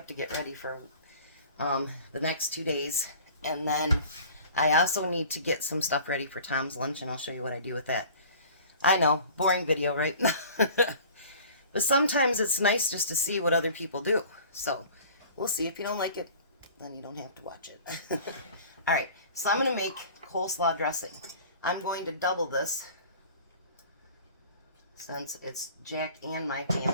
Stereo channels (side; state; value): both; inverted; correlation -0.45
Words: to get ready for the next 2 days. And then I also need to get some stuff ready for Tom's lunch, and I'll show you what I do with that. I know, boring video, right? But sometimes it's nice just to see what other people do. So we'll see. If you don't like it, then you don't have to watch it. All right, so I'm going to make coleslaw dressing. I'm going to double this since it's Jack and my